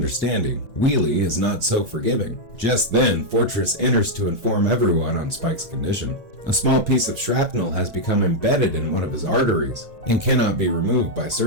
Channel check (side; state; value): left; late; 1.8 ms